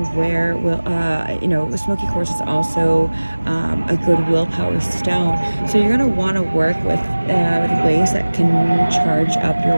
wear smoky quartz is also a good willpower stone, so you're going to want to work with ways that can charge up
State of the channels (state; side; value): inverted; both; correlation -1.00